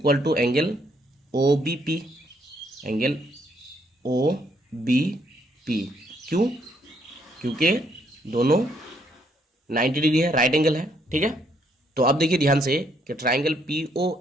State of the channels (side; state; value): both; normal; correlation 0.71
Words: to angle O B P, angle O B P, क्यों, क्योंकि दोनों 90 डिग्री है, राइट एंगल है, ठीक है। तो अब देखिए ध्यान से कि ट्राइंगल पी